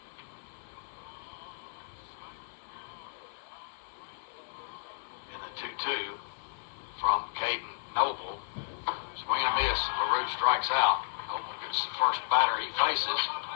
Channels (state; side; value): silent; right; digital silence